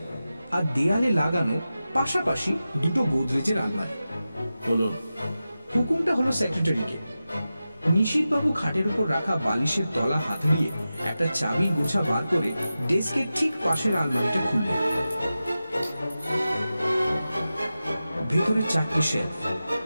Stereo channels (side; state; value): both; inverted; correlation -0.93